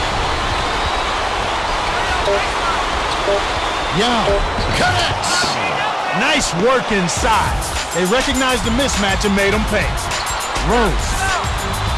Yao connects. Nice work inside. They recognized the mismatch and made them pay. Rose.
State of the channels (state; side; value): identical; both; correlation 1.00